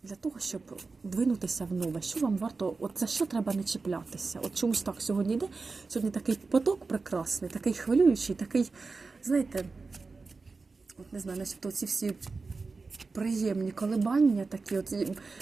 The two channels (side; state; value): left; quieter; 4.1 dB